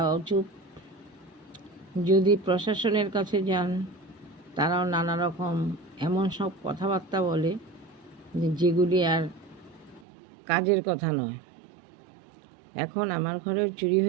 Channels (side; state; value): left; drops out; at 10.1 s